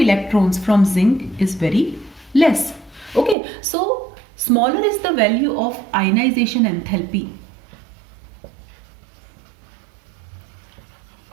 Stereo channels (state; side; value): drops out; left; at 3.4 s